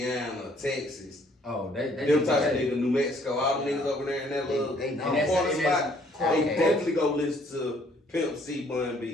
Texas, Oh, they them type of niggas, New Mexico, all the niggas over there in that little They know. corner And that's- spot, they okay. definitely go listen to Pimp C, Bun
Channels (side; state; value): both; normal; correlation 0.63